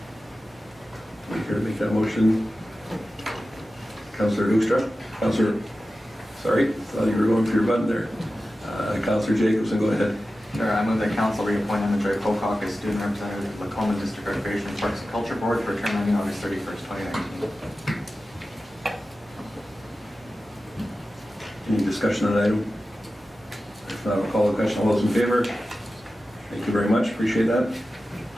Here to make that motion, Councillor Hoekstra. Councillor, sorry, thought you were going for your button there. Councillor Jacobson, go ahead. Sure, I move that council reappoint Emma Joy Pocock as student representative of Lacombe District Recreation Parks and Culture Board for a term ending August 31st, 2019. Any discussion on that item? If not, I'll call the question. All those in favor? Thank you very much. Appreciate that.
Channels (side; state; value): both; normal; correlation 0.94